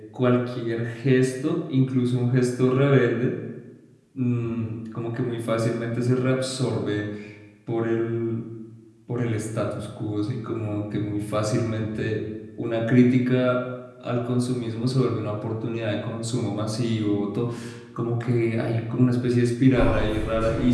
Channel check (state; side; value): identical; both; correlation 1.00